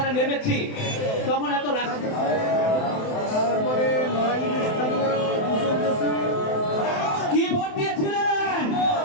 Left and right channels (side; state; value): right; late; 27 ms